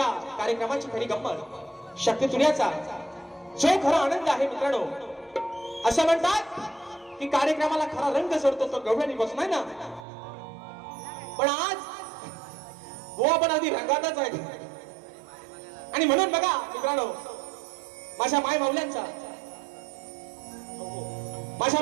कार्यक्रमाची खरी गंमत शक्ती तुर्याचा जो खरा आनंद आहे मित्रांनो असं म्हणतात की कार्यक्रमाला खरा रंग चढतो तो गवळणी बसून आहे ना पण आज बुवा पण आधी रंगातच आहे आणि म्हणून बघा मित्रांनो माझ्या माय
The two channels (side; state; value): left; drops out; at 10.1 s